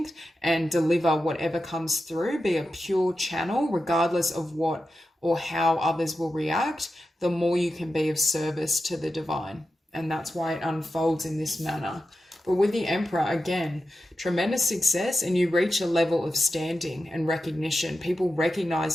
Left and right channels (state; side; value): normal; both; correlation 0.91